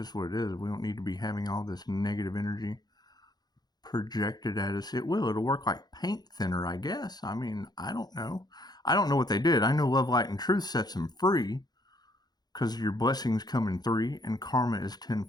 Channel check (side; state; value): right; late; 0.20 ms